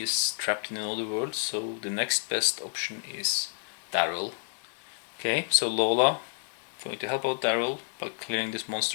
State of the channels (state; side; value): silent; right; digital silence